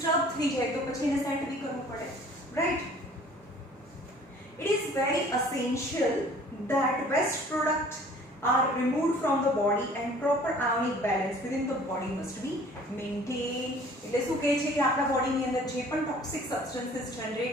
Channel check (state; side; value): normal; both; correlation 0.51